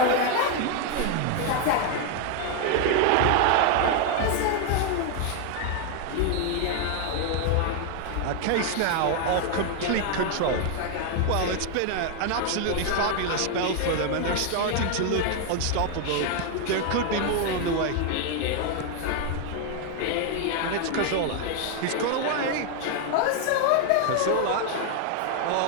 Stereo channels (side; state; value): both; different; correlation 0.00